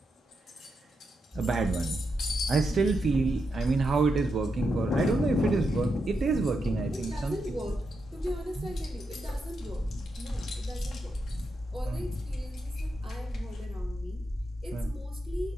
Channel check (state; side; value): normal; both; correlation 0.85